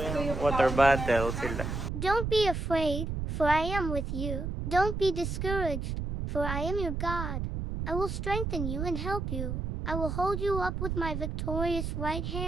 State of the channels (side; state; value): right; noise; rumble, 3 dB below the sound